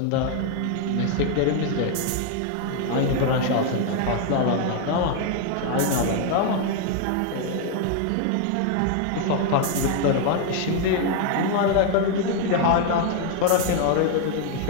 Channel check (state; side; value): different; both; correlation 0.00